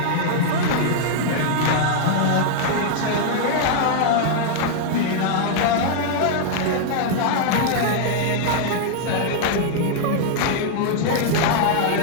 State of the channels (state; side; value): different; both; correlation -0.01